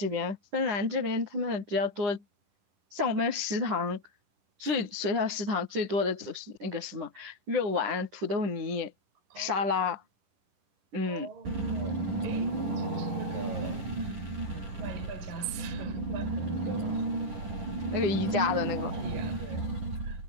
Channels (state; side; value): late; left; 9.8 ms